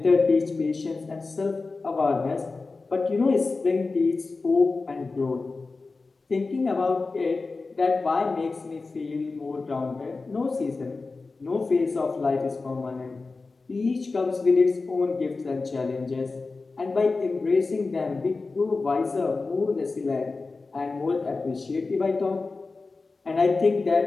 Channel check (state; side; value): quieter; right; 3.9 dB